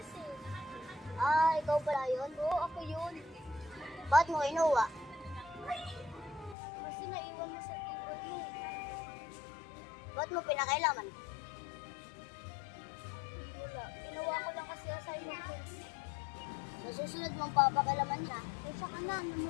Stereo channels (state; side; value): drops out; right; at 6.6 s